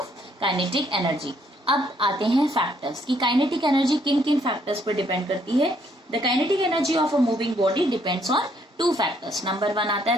kinetic energy. अब आते हैं फैक्टर्स कि काइनेटिक एनर्जी किन किन फैक्टर्स पर डिपेंड करती है। The kinetic energy of a moving body depends on 2 factors. Number 1 आता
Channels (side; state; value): both; normal; correlation 0.68